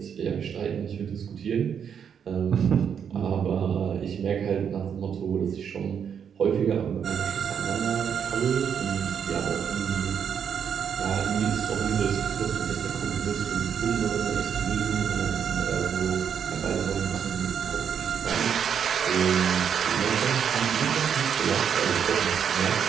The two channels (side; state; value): left; quieter; 7.8 dB